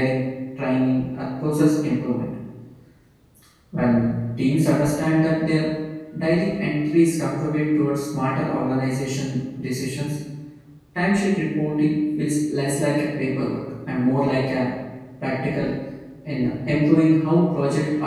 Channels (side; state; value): both; identical; correlation 1.00